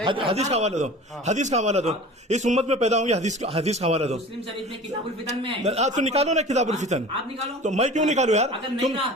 हदीस का हवाला दो, इस उम्मत में पैदा होंगे, हदीस का हवाला दो। मुस्लिम शरीफ में किताबुल फितन में है। तो निकालो ना किताबुल फितन। आप निकालो। तो मैं क्यों निकालू यार? तुम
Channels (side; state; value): both; normal; correlation 0.39